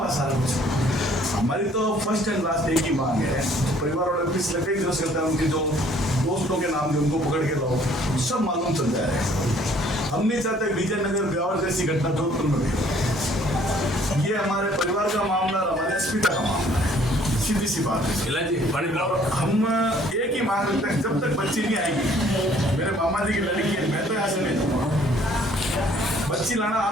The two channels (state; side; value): normal; both; correlation 0.59